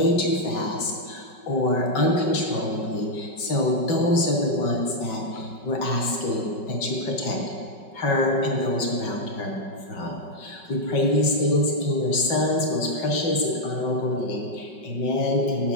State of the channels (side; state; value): right; late; 5.3 ms